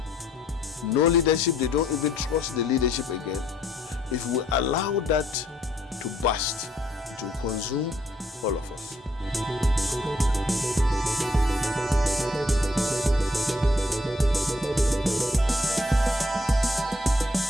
No leadership, they don't even trust the leadership again. If we allow that to burst, it will consume all of us.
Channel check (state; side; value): normal; both; correlation 0.68